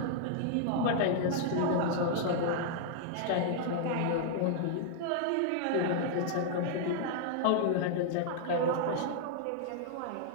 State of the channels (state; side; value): different; both; correlation -0.01